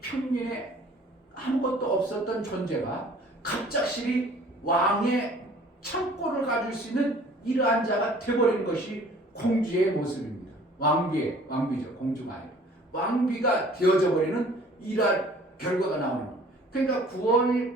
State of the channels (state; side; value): normal; both; correlation 0.52